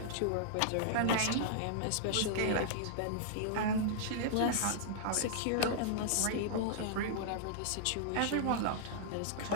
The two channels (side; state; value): both; different; correlation -0.01